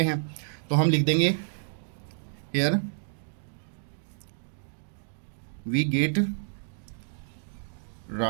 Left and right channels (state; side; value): silent; left; digital silence